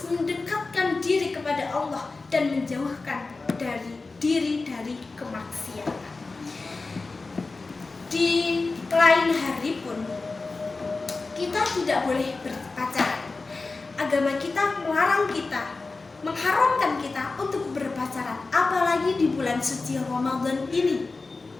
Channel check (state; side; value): quieter; right; 3.8 dB